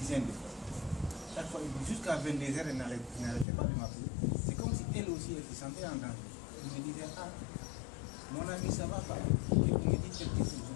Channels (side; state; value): right; drops out; at 3.5 s